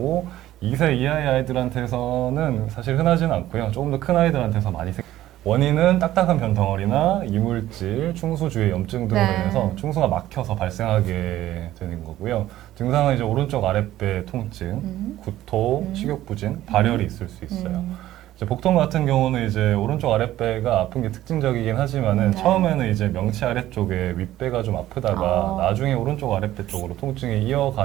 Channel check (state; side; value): quieter; left; 14.1 dB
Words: 2세 이하의 아이들한테서는 사실 흔하지는 않고요. 조금 더 큰 아이들한테서 많이 원인은 딱딱한 변 덩어리나 이물질, 충수 주의 염증 등으로 네. 인해서 충수가 막혀서 발생하게 되는 거고요. 증상은 이제 오른쪽 아랫배 통증, 구토, 식욕부진, 발열이 있을 수 있어요. 이제 복통 같은 경우는 이제 오른쪽 아랫배가 아픈 게 특징적이긴 하지만은 네. 처음에는 이제 명치 아래쪽에 윗배가 좀 아프다가 나중에 오른쪽 아랫배 쪽으로 통증이